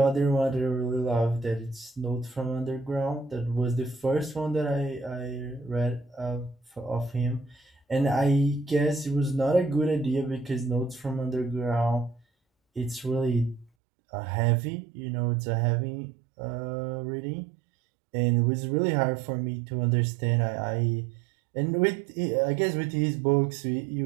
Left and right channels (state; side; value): drops out; left; at 13.7 s